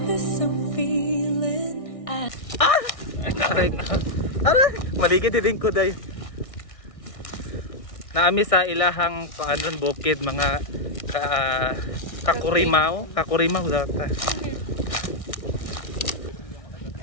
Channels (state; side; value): late; right; 1.6 ms